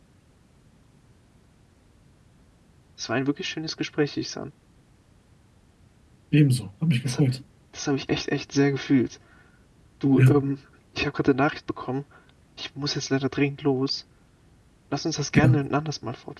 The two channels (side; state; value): both; identical; correlation 1.00